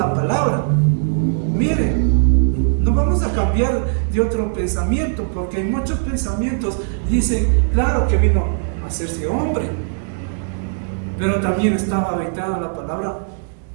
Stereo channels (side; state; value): left; silent; digital silence